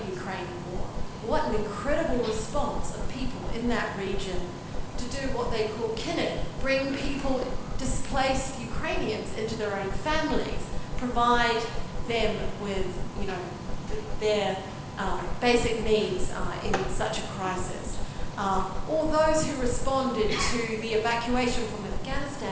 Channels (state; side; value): identical; both; correlation 1.00